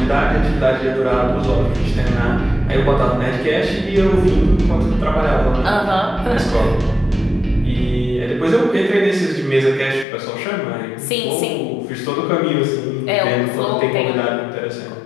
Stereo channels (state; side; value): drops out; right; at 10.1 s